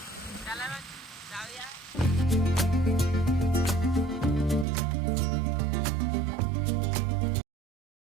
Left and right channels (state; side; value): drops out; left; at 4.7 s